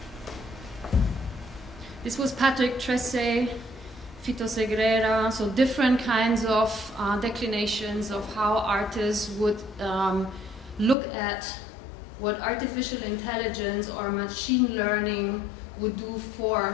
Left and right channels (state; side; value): drops out; right; at 11.0 s